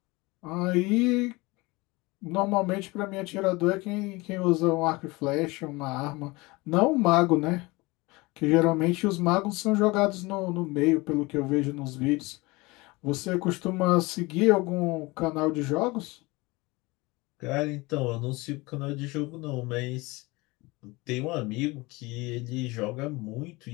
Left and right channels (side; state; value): right; quieter; 23.3 dB